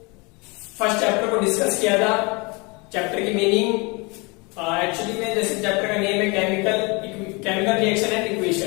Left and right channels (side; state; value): right; quieter; 28.3 dB